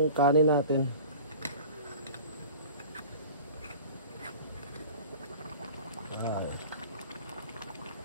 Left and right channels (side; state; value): both; inverted; correlation -0.41